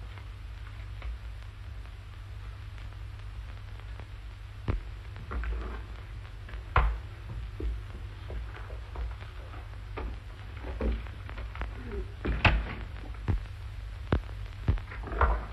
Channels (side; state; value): both; identical; correlation 1.00